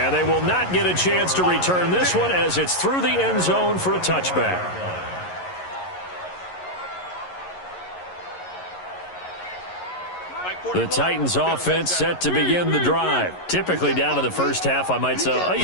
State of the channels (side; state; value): right; late; 11 ms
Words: they will not get a chance to return this one as it's through the end zone for a touchback. The Titans offense set to begin the drive. Typically down to the first half, I might say, oh, you